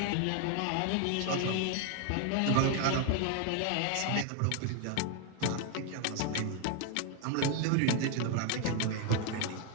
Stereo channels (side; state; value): both; different; correlation 0.01